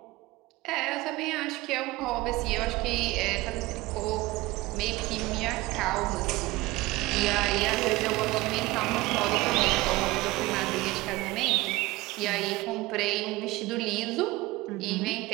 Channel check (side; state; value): left; quieter; 20.1 dB